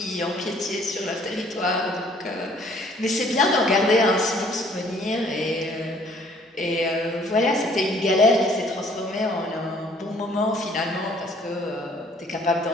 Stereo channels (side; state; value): both; normal; correlation 0.59